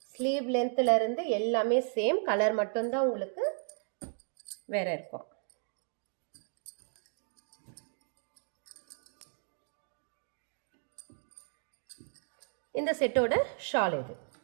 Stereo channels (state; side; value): silent; left; digital silence